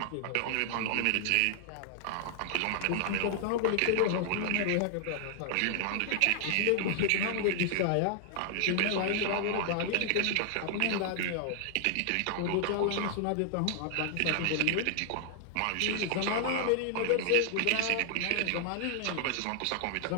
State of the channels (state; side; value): different; both; correlation -0.01